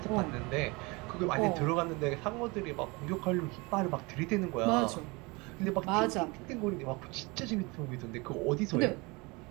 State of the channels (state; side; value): quieter; left; 26.1 dB